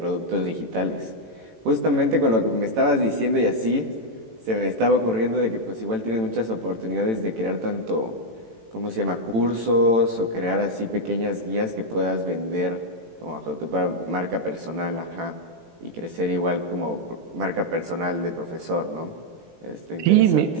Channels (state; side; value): late; left; 18 ms